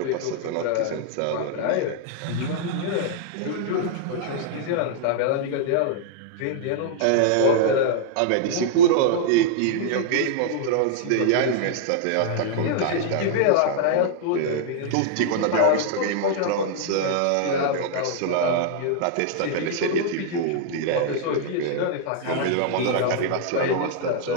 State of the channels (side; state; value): both; different; correlation -0.01